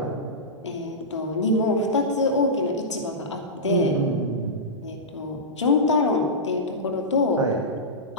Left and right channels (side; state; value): both; normal; correlation -0.16